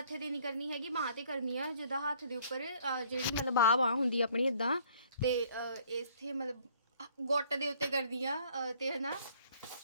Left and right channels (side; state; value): both; inverted; correlation -0.61